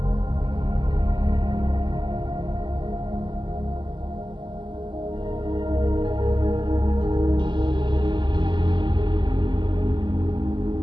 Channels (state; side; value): late; left; 0.22 ms